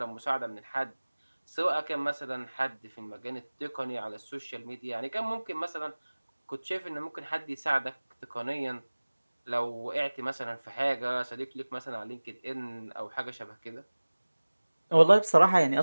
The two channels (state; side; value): inverted; both; correlation -1.00